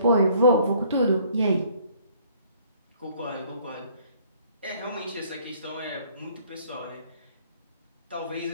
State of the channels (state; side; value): inverted; both; correlation -0.59